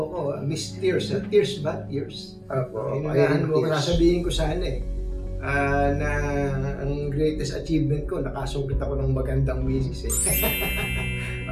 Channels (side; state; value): both; identical; correlation 1.00